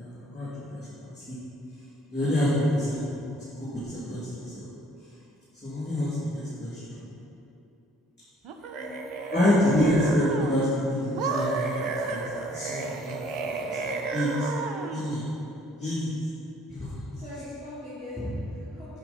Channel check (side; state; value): both; normal; correlation 0.61